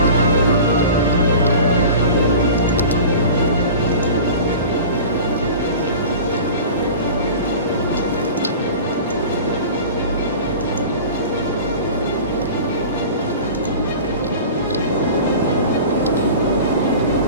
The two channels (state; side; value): inverted; both; correlation -0.37